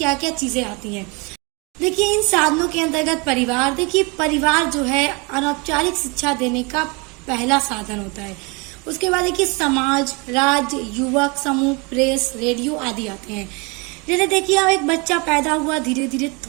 क्या चीजें आती हैं। देखिए, इन साधनों के अंतर्गत परिवार। देखिए, परिवार जो है अनौपचारिक शिक्षा देने का पहला साधन होता है। उसके बाद देखिए, समाज, राज्य, युवक समूह, प्रेस, रेडियो आदि आते हैं। जैसे देखिए, अब एक बच्चा पैदा हुआ, धीरे धीरे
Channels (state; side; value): quieter; left; 29.5 dB